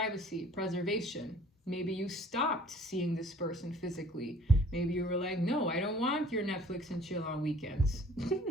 preservation. Maybe you stopped seeing this person physically. Maybe you were like, no, I don't want your Netflix and chill on weekends.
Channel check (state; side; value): normal; both; correlation 0.53